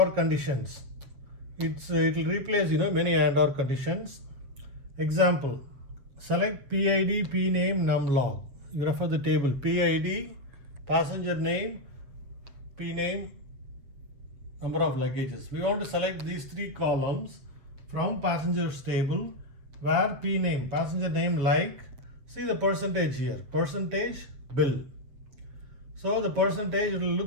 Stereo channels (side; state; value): left; late; 7.8 ms